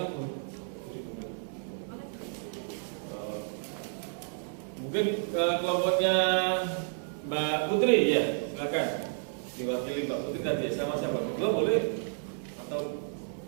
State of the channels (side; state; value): left; silent; 57 dB below the other